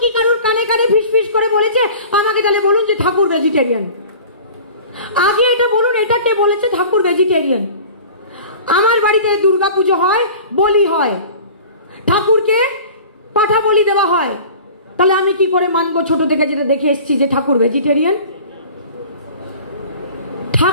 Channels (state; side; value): inverted; both; correlation -0.42